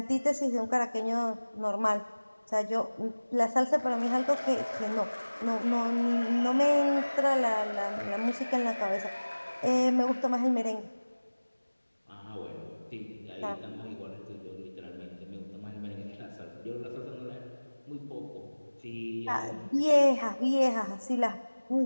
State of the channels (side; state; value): both; inverted; correlation -1.00